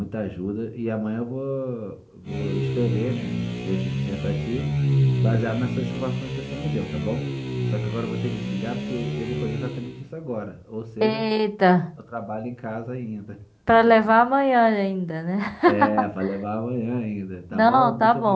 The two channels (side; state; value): both; identical; correlation 1.00